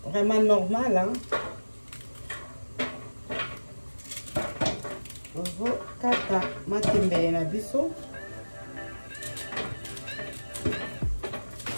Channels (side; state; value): both; inverted; correlation -1.00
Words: vraiment normal. Hein. Kata matembele na biso.